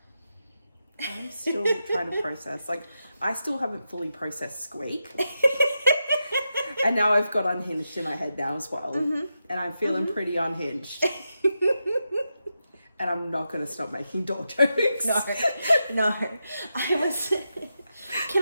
I'm still trying to process. Like, I still haven't fully processed Squeak. And now I've got Unhinged in my head now as well. And I'm feeling pretty unhinged. And I'm not going to stop making door jokes. No.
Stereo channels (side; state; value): both; inverted; correlation -0.87